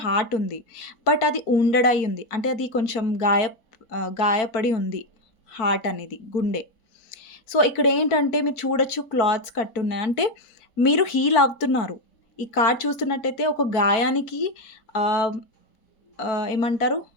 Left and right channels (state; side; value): late; right; 4.5 ms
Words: హార్ట్ ఉంది. బట్ అది వుండెడ్ అయ్యి ఉంది. అంటే అది కొంచెం గాయపడి ఉంది హార్ట్ అనేది, గుండె. సో, ఇక్కడేంటంటే మీరు చూడొచ్చు క్లాత్స్ కట్టున్నాయి. అంటే మీరు హీల్ అవుతున్నారు. ఈ కార్డ్ చూస్తున్నట్టయితే ఒక గాయానికి ఆహ్, ఏమంటారు?